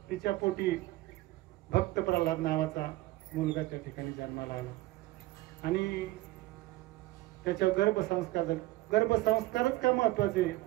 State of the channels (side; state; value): left; quieter; 18.2 dB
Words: तिच्या पोटी भक्त प्रल्हाद नावाचा मुलगा त्या ठिकाणी जन्माला आला. आणि त्याच्या गर्भसंस्कार झाले. गर्भसंस्कारच का महत्वाचे?